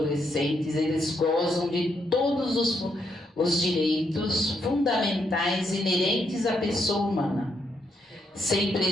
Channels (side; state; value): both; normal; correlation 0.78